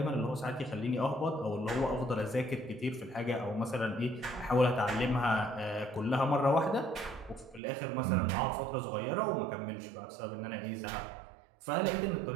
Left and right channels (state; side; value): drops out; left; at 7.6 s